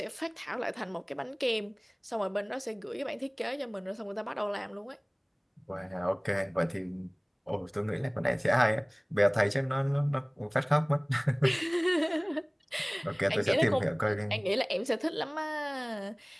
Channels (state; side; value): identical; both; correlation 1.00